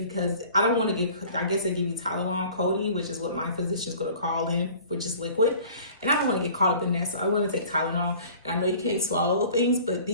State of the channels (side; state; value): both; inverted; correlation -0.47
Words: I don't want to get, I guess they give you Tylenol codeine, which is what my physician's going to call in, which is liquid. And I don't want to get caught up in that, so I want to take Tylenol. And I know you can't swallow things, but